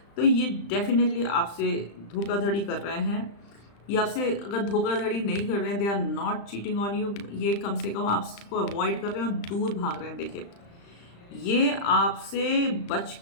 तो ये डेफिनेटली आपसे धोखाधड़ी कर रहे हैं। ये आपसे अगर धोखाधड़ी नहीं कर रहे हैं, they are not cheating on you, ये कम से कम आपको अवॉइड कर रहे हैं और दूर भाग रहे हैं। देखिए ये आपसे बच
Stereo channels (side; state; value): right; late; 35 ms